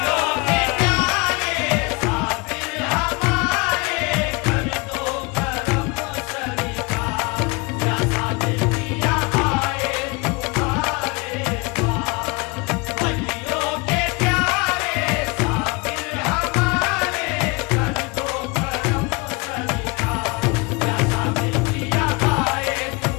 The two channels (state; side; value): quieter; right; 27.7 dB